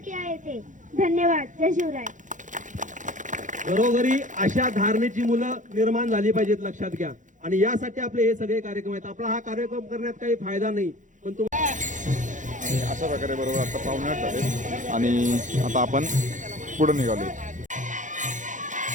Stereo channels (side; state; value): left; late; 0.37 ms